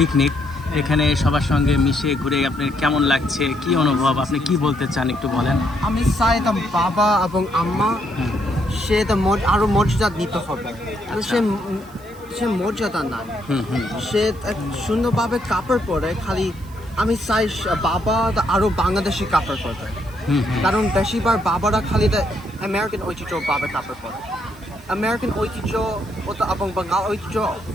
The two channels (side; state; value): right; noise; hiss, 25 dB below the sound